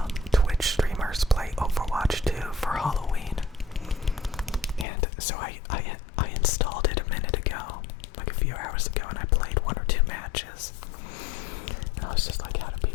Twitch streamers play Overwatch 2 for Halloween. And so I installed it a minute ago, like a few hours ago, and I played 1 or 2 matches. And I was just like, how do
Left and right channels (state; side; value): drops out; right; at 4.9 s